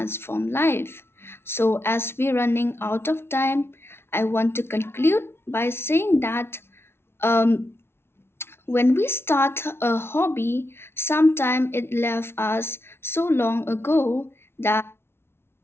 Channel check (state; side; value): late; right; 0.12 ms